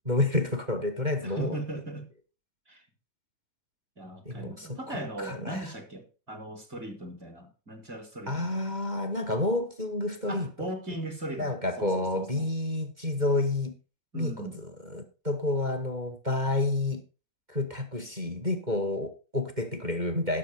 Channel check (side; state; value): left; late; 2.1 ms